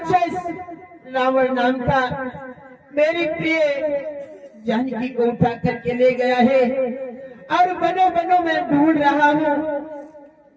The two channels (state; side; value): identical; both; correlation 1.00